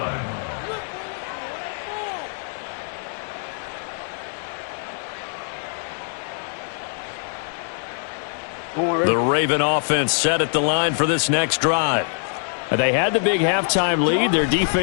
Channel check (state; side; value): silent; right; 60 dB below the other